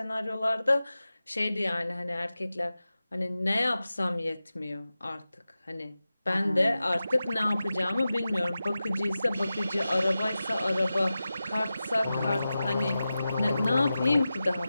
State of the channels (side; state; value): both; inverted; correlation -0.94